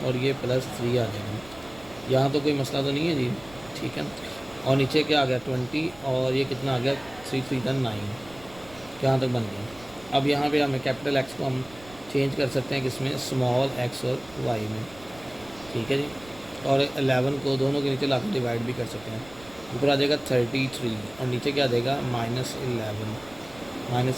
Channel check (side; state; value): right; noise; rumble, 22 dB below the sound